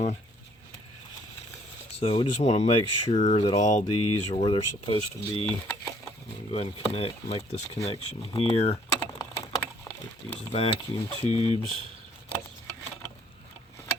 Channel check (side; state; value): both; normal; correlation 0.62